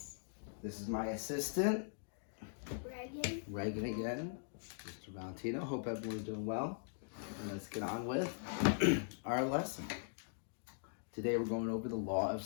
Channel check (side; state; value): right; silent; digital silence